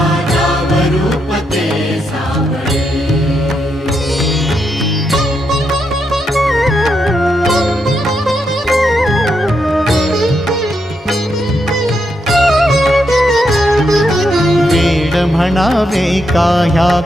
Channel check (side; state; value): both; normal; correlation 0.81